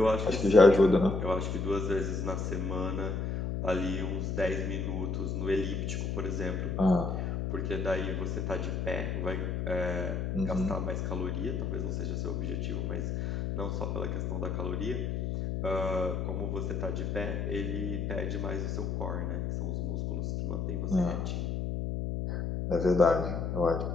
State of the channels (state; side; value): noise; left; hum, 1 dB below the sound